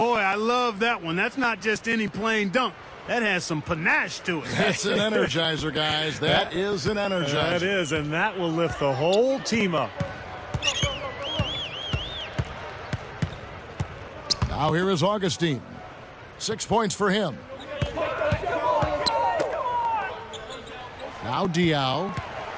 I love that one. That's not just any plain dunk. That has some panache to it. That's an energizer, guys. That is an energizer. That is, and that will lift the whole team up. Now here is Augustine. 6 points for him. Now Diao.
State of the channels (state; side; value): identical; both; correlation 1.00